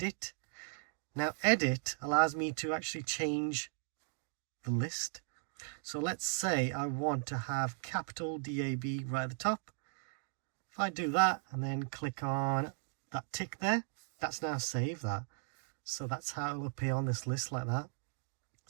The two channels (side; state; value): left; silent; digital silence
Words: Now edit allows me to actually change the list. So let's say I want to have capital DAB right at the top. If I do that and then click on that tick there, that's now saved that. So that's how it will appear on this list like that.